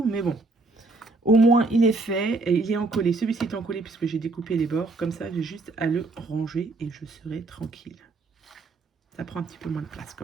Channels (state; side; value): quieter; left; 3.4 dB